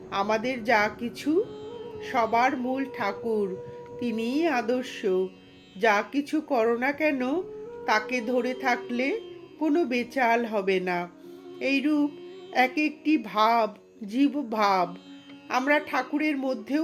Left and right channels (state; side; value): identical; both; correlation 1.00